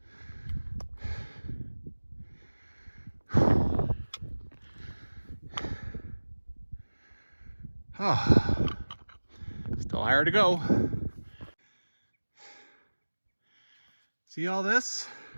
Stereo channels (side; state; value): both; inverted; correlation -1.00